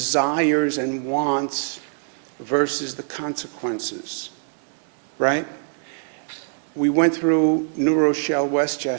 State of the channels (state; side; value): silent; left; digital silence